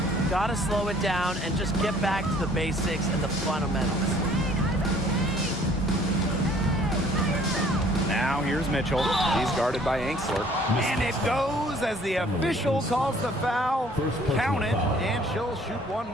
Gotta slow it down and just get back to the basics and the fundamentals. Now here's Mitchell. He's guarded by Angsler. And it goes as the official calls the foul. Count it, and she'll shoot one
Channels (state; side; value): normal; both; correlation 0.57